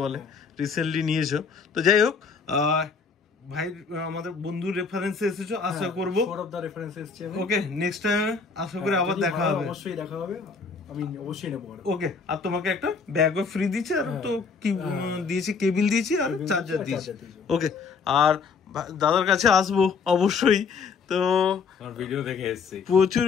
বলে, রিসেন্টলি নিয়েছো। তো যাই হোক, ভাই আমাদের বন্ধুর রেফারেন্সে এসেছো, আশা করবো। ওকে, নেক্সট টাইম আশা করি আবার দেখা হবে। অবশ্যই দেখা হবে, আমি অবশ্যই নেব। ওকে, আর তোমাকে একটা ব্যাগও ফ্রি দিয়েছি, আর তো কি দিয়েছি, কেবিল দিয়েছি আর চার্জার দিয়েছি। ওকে, আর দাদার কাছে আসবো অবশ্যই। তো ভিডিও দেখে এসেছি, প্রচুর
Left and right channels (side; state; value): right; quieter; 5.3 dB